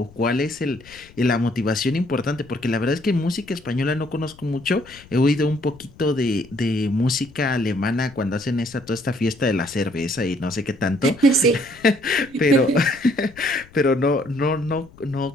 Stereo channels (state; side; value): noise; left; rumble, 23 dB below the sound